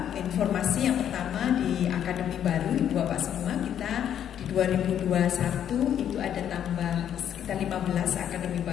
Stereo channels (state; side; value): quieter; right; 9.7 dB